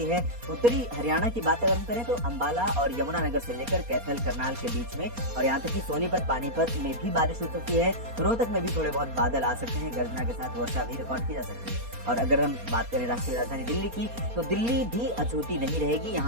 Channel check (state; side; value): late; left; 4.2 ms